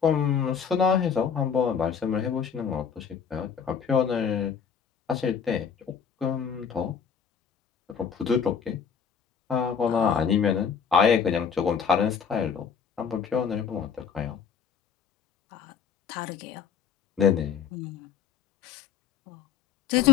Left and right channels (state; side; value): quieter; right; 6.9 dB